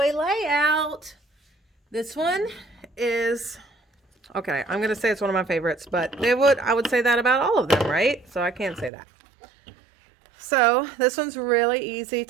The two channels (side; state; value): left; drops out; at 8.9 s